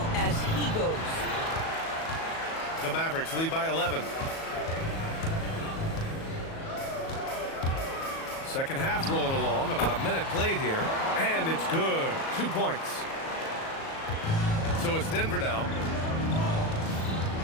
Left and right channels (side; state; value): right; late; 37 ms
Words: as he goes. The Mavericks lead by 11. Second half rolling along, about a minute played here, and it's good. 2 points. So it's Denver now.